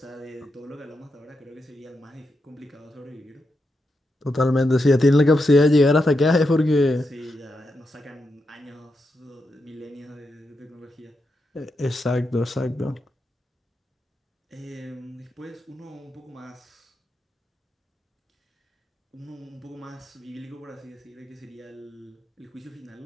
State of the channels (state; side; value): normal; both; correlation 0.85